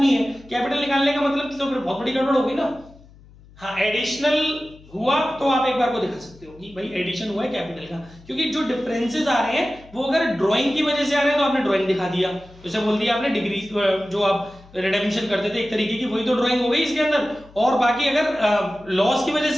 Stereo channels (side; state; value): left; noise; hum, 24 dB below the sound